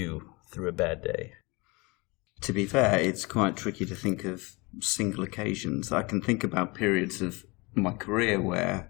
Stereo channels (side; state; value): right; quieter; 26.0 dB